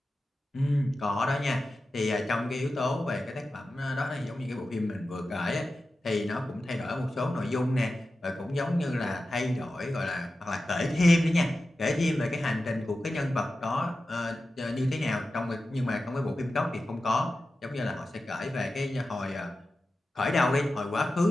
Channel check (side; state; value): both; normal; correlation 0.93